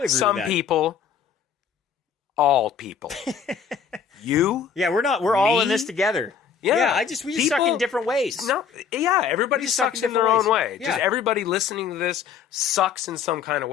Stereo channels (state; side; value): quieter; right; 6.9 dB